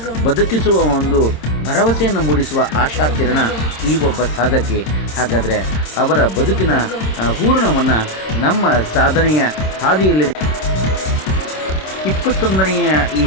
ಬದುಕಿಸುವ ಒಂದು ಭರವಸೆಯನ್ನು ಮೂಡಿಸುವ ಆಶಾ ಕಿರಣ ಈ ಒಬ್ಬ ಸಾಧಕಿ. ಹಾಗಾದರೆ ಅವರ ಬದುಕಿನ ಹೂರಣವನ್ನು ನಮ್ಮ ಸಾಧನೆಯ ಹಾದಿಯಲ್ಲಿ 21ನೆಯ ಈ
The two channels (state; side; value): late; right; 26 ms